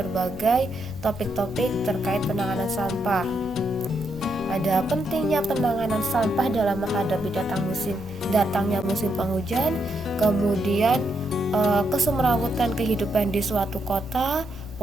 topik-topik terkait penanganan sampah. Ada pentingnya penanganan sampah dalam menghadapi datangnya musim penghujan, kemudian kesemrawutan kehidupan di suatu kota,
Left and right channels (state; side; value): noise; left; rumble, 15 dB below the sound